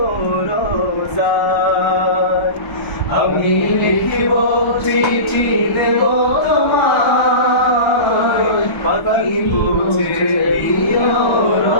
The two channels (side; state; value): right; late; 1.2 ms